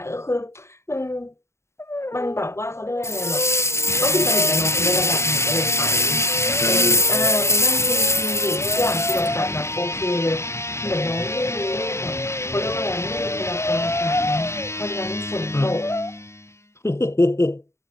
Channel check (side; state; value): right; late; 0.13 ms